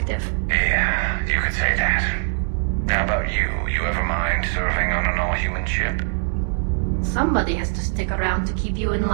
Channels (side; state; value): left; silent; digital silence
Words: Yeah, you could say that. How about you? You ever mind serving on an all-human ship? Somebody has to stick around to keep you in